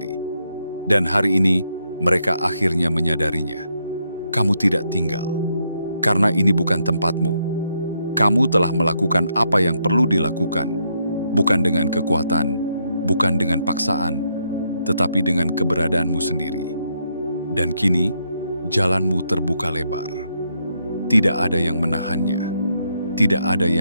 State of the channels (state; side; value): inverted; both; correlation -0.78